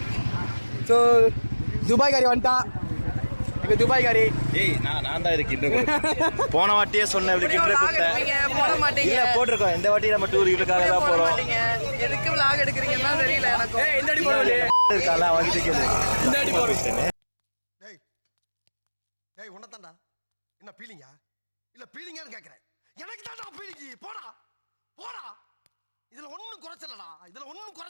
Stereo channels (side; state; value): both; inverted; correlation -1.00